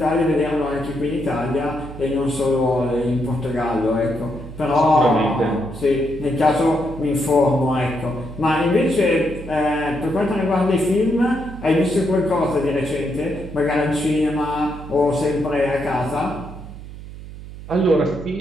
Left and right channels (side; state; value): right; noise; hum, 13 dB below the sound